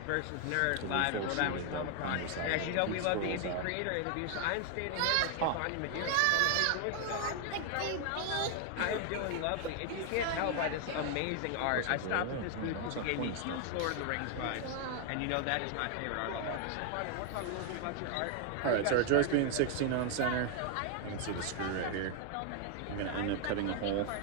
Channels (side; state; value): both; different; correlation 0.00